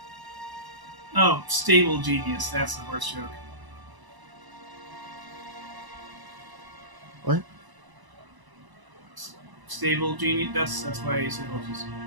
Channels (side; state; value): left; late; 1.0 ms